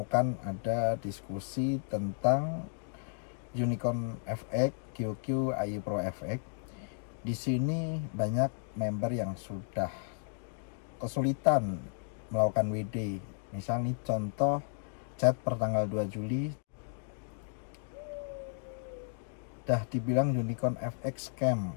ada diskusi tentang Unicorn FX, QQ, iPro FX. Di sini banyak member yang sudah kesulitan melakukan WD. Misalnya contoh chat pertanggal 2 Juli dah dibilang Unicorn FX scam.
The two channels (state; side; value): silent; right; digital silence